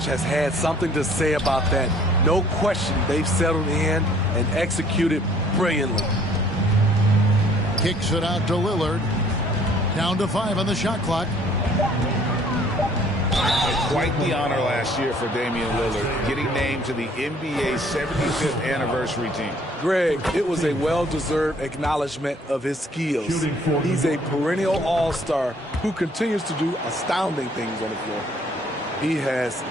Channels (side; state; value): both; normal; correlation 0.58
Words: has had something to say about that. No question, they've settled in and executed brilliantly. Kicks it out to Lillard. Down to 5 on the shot clock. Quite the honor last year for Damian Lillard, getting named to the NBA 75th anniversary team. Greg, it was a well-deserved acknowledgement of his skills. He's a perennial all-star who continues to do astounding things on the floor. He has